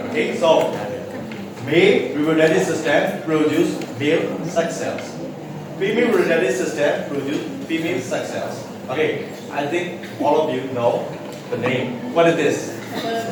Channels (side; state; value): both; identical; correlation 1.00